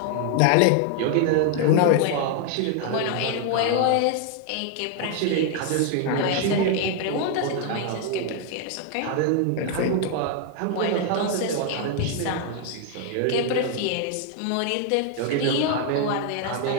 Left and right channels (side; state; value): both; different; correlation 0.00